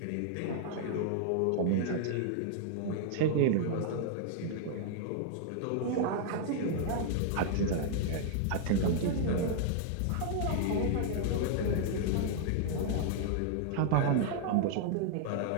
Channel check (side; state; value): both; different; correlation -0.01